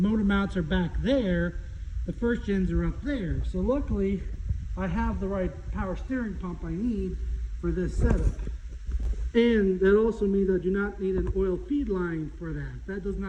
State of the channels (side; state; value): both; identical; correlation 1.00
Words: mounts are back there, the first gens are up there. So luckily, I have the right power steering pump I need for this setup. And that also means I do not need an oil feed line for that. That does